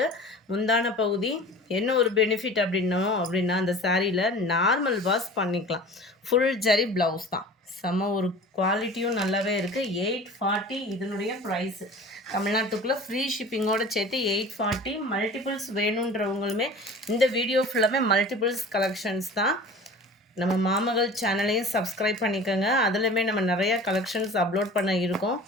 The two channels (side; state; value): both; normal; correlation 0.40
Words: முந்தான பகுதி என்ன ஒரு பெனிஃபிட் அப்படின்னா அந்த சாரியில் நார்மல் வாஷ் பண்ணிக்கலாம். ஃபுல் ஜரி ப்ளவுஸ் தான். செம ஒரு குவாலிட்டியும் நல்லாவே இருக்குது. 840 இதனுடைய ப்ரைஸு. தமிழ்நாட்டுக்குள்ளே ஃப்ரீ ஷிப்பிங்கோடு சேர்த்து 840. மல்டிபிள்ஸ் வேணுன்றவங்களுமே இந்த வீடியோ ஃபுல்லாமே மல்டிபிள்ஸ் கலெக்ஷன்ஸ் தான். நம்ம மாமகள் சேனலையும் சப்ஸ்கிரைப் பண்ணிக்கோங்க. அதுலேயுமே நம்ம நிறையா கலெக்ஷன்ஸ் அப்லோட் பண்ண இருக்கோம்.